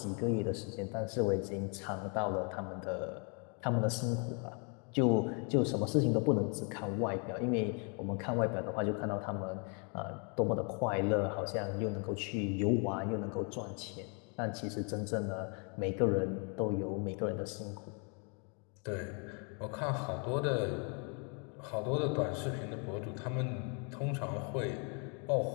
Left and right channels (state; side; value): quieter; right; 36.9 dB